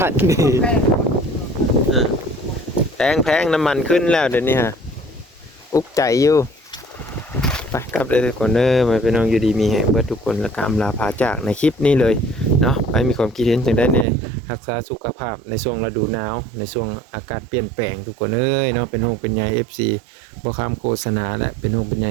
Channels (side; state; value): left; drops out; at 14.1 s